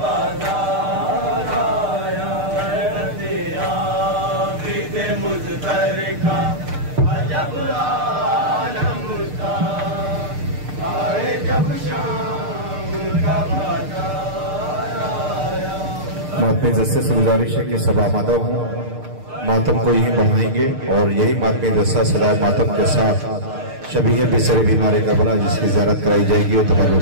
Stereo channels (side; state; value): left; late; 6.6 ms